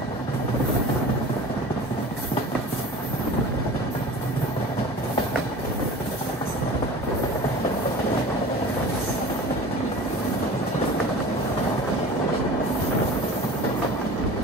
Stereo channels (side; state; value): both; normal; correlation 0.39